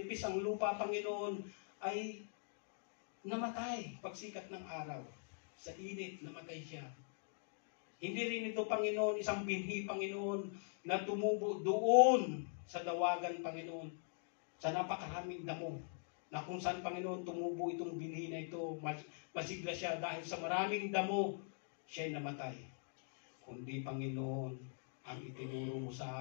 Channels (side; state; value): right; silent; digital silence